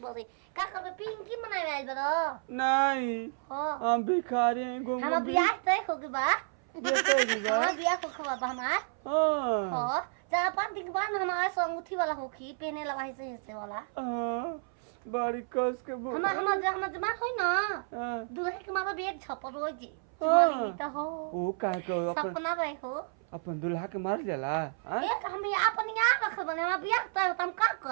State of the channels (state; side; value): silent; left; 57 dB below the other